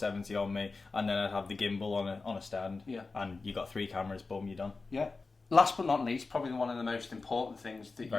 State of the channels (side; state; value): right; quieter; 3.9 dB